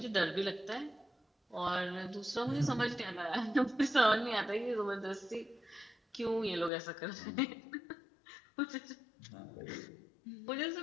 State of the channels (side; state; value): right; drops out; at 6.7 s